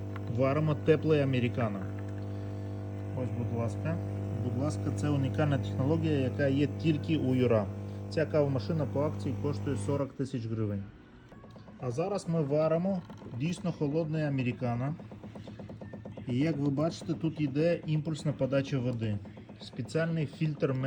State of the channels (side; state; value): both; identical; correlation 1.00